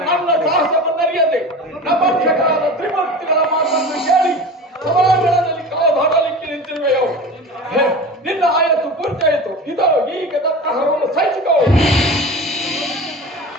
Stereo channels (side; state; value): both; normal; correlation 0.33